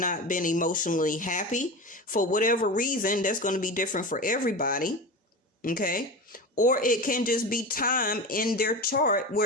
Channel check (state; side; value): normal; both; correlation 0.27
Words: been emotionally happy. For whatever reason, that's going to be different for everybody. Okay. Or it can just be time in their chart